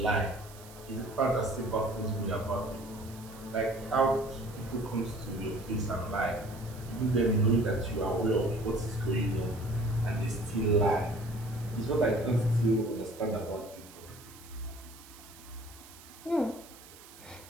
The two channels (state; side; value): noise; right; hiss, 20 dB below the sound